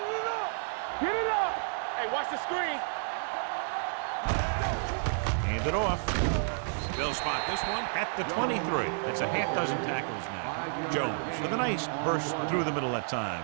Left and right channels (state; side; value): silent; left; digital silence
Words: it up. Get it up. Hey, watch the screen. We coming to right. Let's go. Hand it off. They'll spot this one at the 23. That's a half dozen tackles now. Jones with a nice burst through the middle that time.